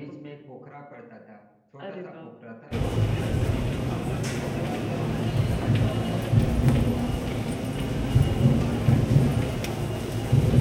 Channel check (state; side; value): identical; both; correlation 1.00